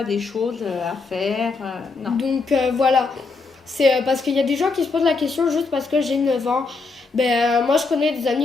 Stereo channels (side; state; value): right; quieter; 4.1 dB